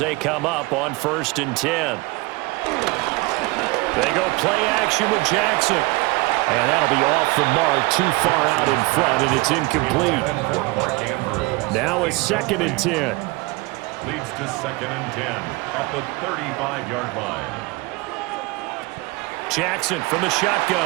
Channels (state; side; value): quieter; left; 23.8 dB